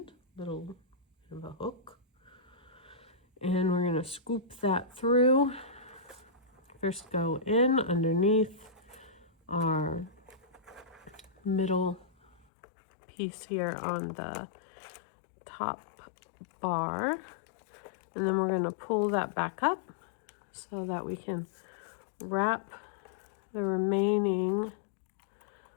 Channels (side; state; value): right; drops out; at 12.5 s